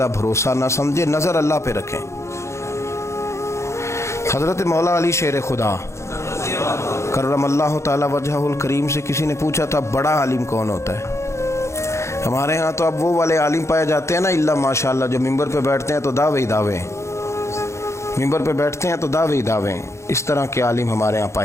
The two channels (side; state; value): right; late; 0.14 ms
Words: بھروسہ نہ سمجھیں، نظر اللہ پہ رکھیں۔ حضرت مولا علی شیر خدا کرم اللہ تعالی وجہہ الکریم سے کسی نے پوچھا تھا بڑا عالم کون ہوتا ہے؟ ہمارے ہاں تو اب وہ والے عالم پائے جاتے ہیں نا اللہ ماشاءاللہ، جو ممبر پہ بیٹھتے ہیں تو دعوے ہی دعوے، ممبر پہ بیٹھتے ہیں تو دعوے ہی دعوے، اس طرح کے عالم ہمارے ہاں